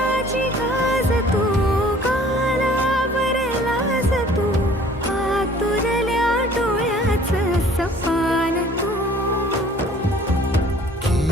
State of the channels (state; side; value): normal; both; correlation 0.53